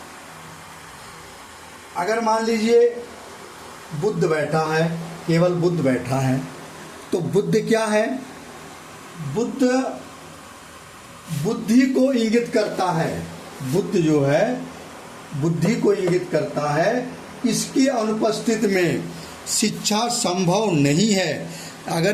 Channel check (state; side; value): identical; both; correlation 1.00